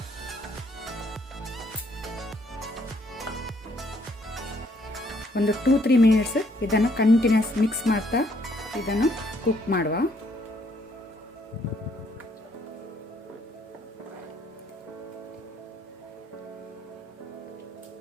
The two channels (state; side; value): normal; both; correlation 0.68